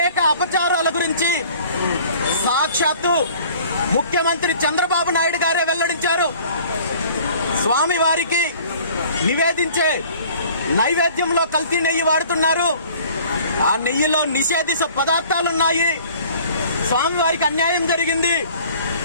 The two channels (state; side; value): inverted; both; correlation -0.51